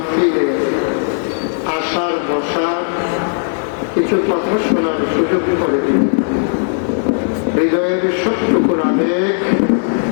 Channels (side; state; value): right; silent; 69 dB below the other